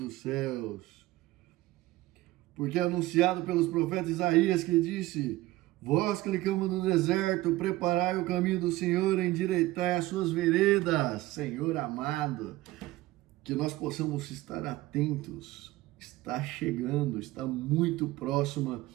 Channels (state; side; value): quieter; left; 17.8 dB